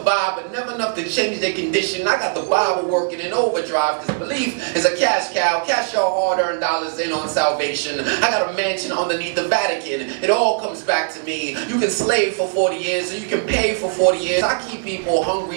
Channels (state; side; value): silent; left; 66 dB below the other